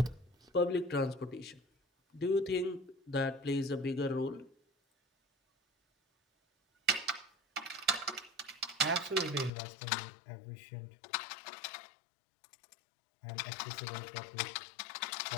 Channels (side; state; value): right; drops out; at 9.5 s